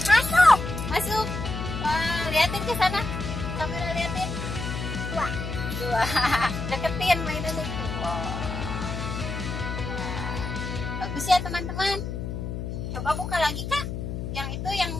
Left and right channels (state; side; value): noise; left; hum, 5 dB below the sound